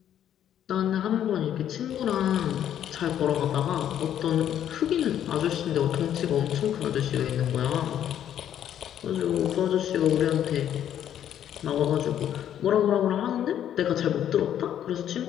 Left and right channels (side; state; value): right; quieter; 10.3 dB